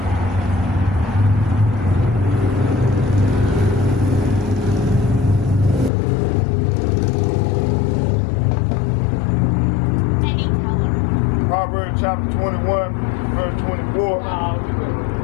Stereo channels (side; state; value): right; drops out; at 5.9 s